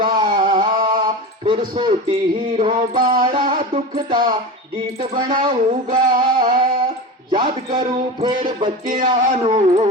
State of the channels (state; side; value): normal; both; correlation 0.27